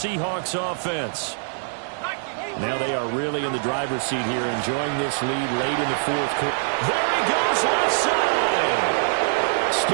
offense. Now they are really in the driver's seat here, enjoying this lead late in the fourth quarter. There he goes, left side.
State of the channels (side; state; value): left; silent; 58 dB below the other